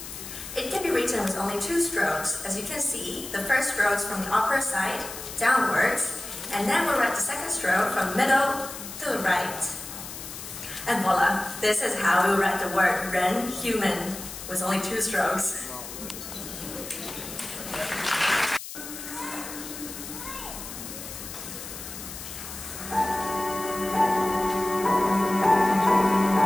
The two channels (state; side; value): noise; left; hiss, 11 dB below the sound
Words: It can be written with only two strokes. As you can see, the first stroke is from the upper side downwards, and then we'll write the second stroke from middle to the right. And voila, this is how we write the word Ren, human, with only two strokes.